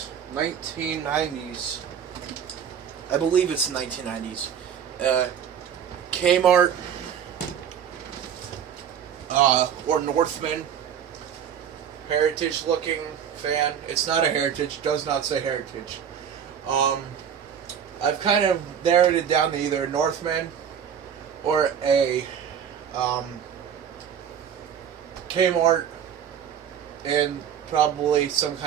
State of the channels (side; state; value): left; quieter; 8.4 dB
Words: 1990s. I believe it's 1990s. Kmart or Northman heritage looking fan. It's not a heritage. Does not say heritage. I've kind of narrowed it down to either Northman or a Kmart and probably some